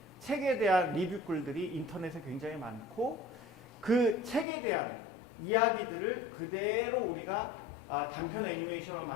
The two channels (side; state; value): right; drops out; at 4.5 s